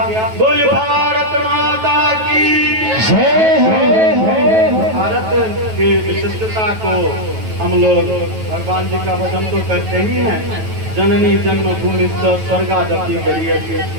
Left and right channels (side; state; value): left; late; 9.2 ms